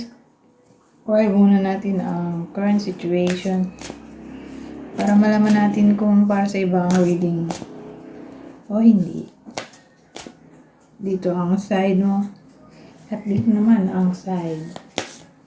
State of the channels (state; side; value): identical; both; correlation 1.00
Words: muna natin ang current situation para malaman natin kung para sa iba ang reading o hindi. Dito ang side mo at dito naman ang side